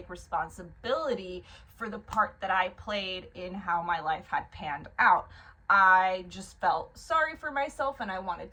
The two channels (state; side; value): identical; both; correlation 1.00